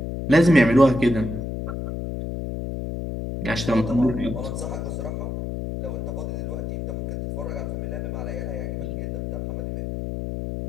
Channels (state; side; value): noise; left; hum, 4 dB below the sound